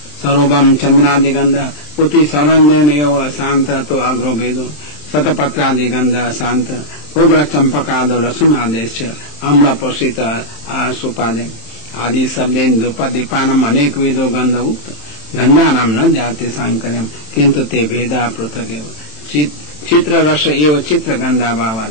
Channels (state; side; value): late; right; 27 ms